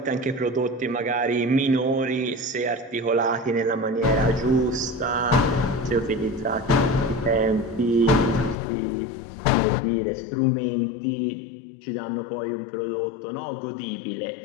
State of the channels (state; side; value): drops out; right; at 8.6 s